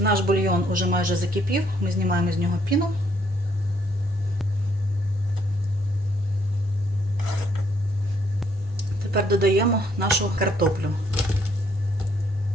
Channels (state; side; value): normal; both; correlation 0.69